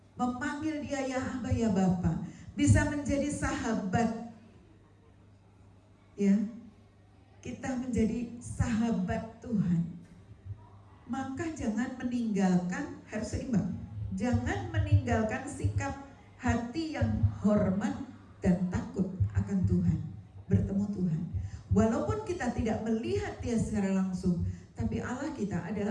memanggil Dia ya Aba ya Bapa, bisa menjadi sahabat, ya, kita menjadi sahabat Tuhan. Maka jangan meninggalkan, harus seimbang, jangan meninggalkan sikap hati yang hormat dan takut akan Tuhan, bertemu Tuhan. Walaupun kita tidak melihat Dia secara langsung, tapi Allah kita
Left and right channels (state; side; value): identical; both; correlation 1.00